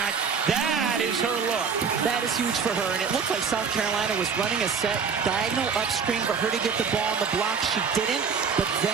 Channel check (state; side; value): quieter; left; 6.0 dB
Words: That is her look. That is huge for her, and it looked like South Carolina was running a set diagonal upstream for her to get the ball on the block. She didn't, but